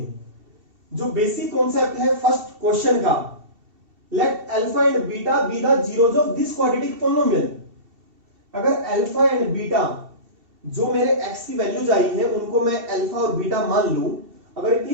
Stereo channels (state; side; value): late; left; 2.7 ms